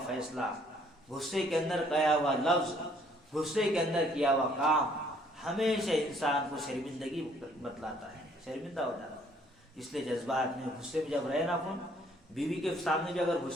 فیصلہ، غصے کے اندر کہا ہوا لفظ، غصے کے اندر کیا ہوا کام ہمیشہ انسان کو شرمندگی بتلاتا ہے، شرمندہ ہو جاتا ہے۔ اس لیے جذبات میں غصے میں جب رہے نا اپن، بیوی کے سامنے بھی اگر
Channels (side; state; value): both; normal; correlation 0.62